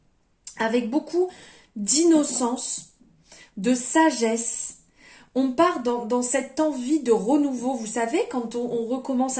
avec beaucoup d'innocence, de sagesse. On part dans cette envie de renouveau. Vous savez, quand on recommence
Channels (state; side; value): identical; both; correlation 1.00